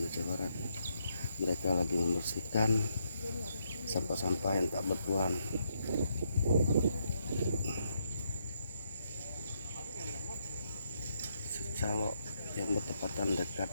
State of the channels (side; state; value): both; inverted; correlation -0.77